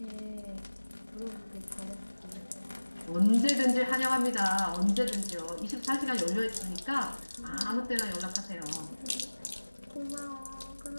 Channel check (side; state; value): both; inverted; correlation -1.00